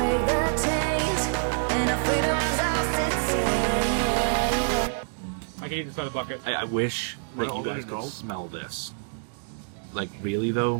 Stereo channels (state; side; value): silent; left; digital silence